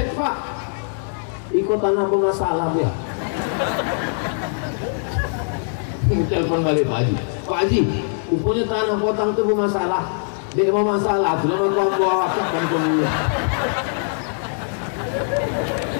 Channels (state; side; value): silent; right; 64 dB below the other